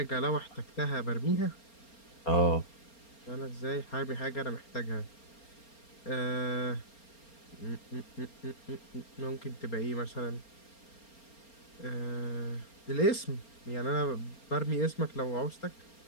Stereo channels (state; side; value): late; right; 4.3 ms